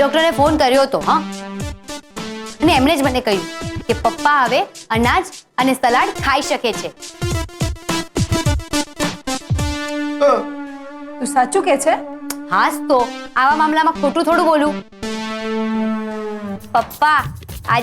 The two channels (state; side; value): identical; both; correlation 1.00